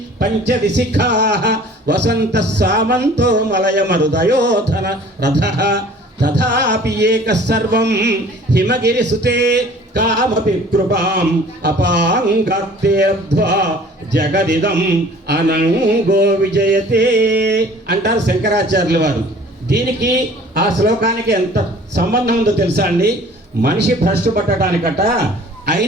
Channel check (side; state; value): both; normal; correlation 0.50